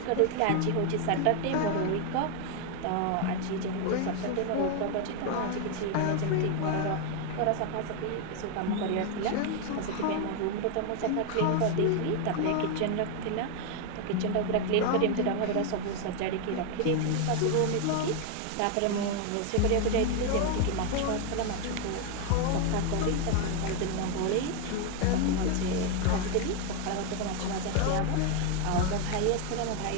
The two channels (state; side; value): different; both; correlation 0.01